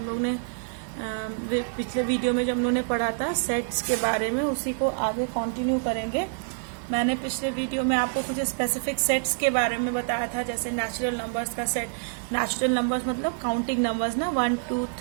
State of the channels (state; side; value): silent; left; 60 dB below the other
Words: लोग ने पिछले वीडियो में जो हम लोगों ने पढ़ा था सेट्स के बारे में, उसी को आगे कंटिन्यू करेंगे। मैंने पिछले वीडियो में आपको कुछ स्पेसिफिक सेट्स के बारे में बताया था, जैसे नेचुरल नंबर्स का सेट। नेचुरल नंबर्स मतलब काउंटिंग नंबर्स ना, 1 2